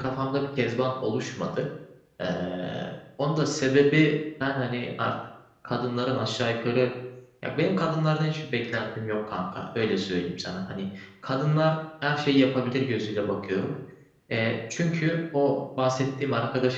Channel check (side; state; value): both; identical; correlation 1.00